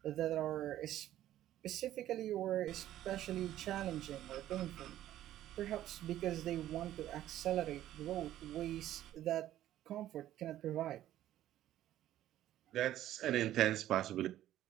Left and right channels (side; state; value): left; quieter; 13.0 dB